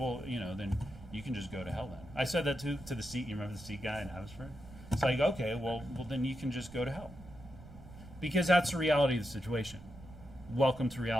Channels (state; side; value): noise; right; rumble, 17 dB below the sound